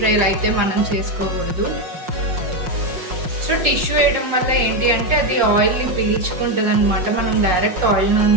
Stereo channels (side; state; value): left; late; 5.5 ms